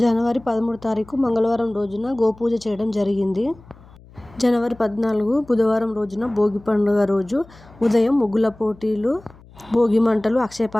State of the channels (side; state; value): left; noise; hum, 24 dB below the sound